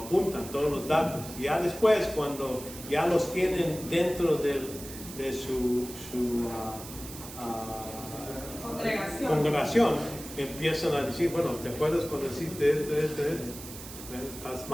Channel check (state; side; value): noise; right; hiss, 13 dB below the sound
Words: todos los datos. Y ya después, cuando ya los tienen dentro de su congregación, empiezan a decir, bueno, ¿te acuerdas cuando hiciste esto? Estás